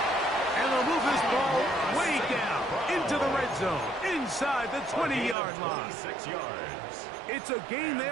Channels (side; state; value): left; drops out; at 5.4 s